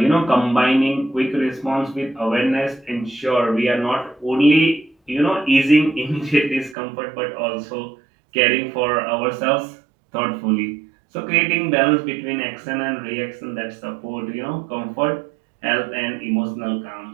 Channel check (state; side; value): drops out; left; at 6.8 s